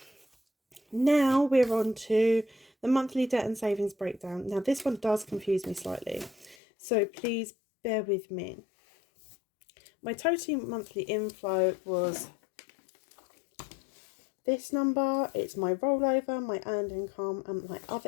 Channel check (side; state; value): right; drops out; at 6.6 s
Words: now we're on to the monthly debt and savings breakdown. Now this one does confuse me slightly, so please bear with me. My total monthly inflow was this number. It's my rollover, my earned income, and my other